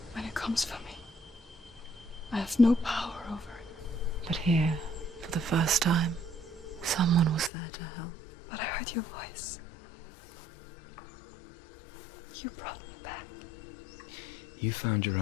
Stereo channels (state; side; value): drops out; right; at 7.5 s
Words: When it comes for me, I have no power over it. But here, for the first time, someone was there to help. But I heard your voice. You brought me back. You found your